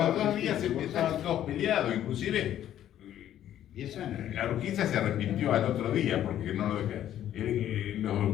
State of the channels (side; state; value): right; quieter; 11.5 dB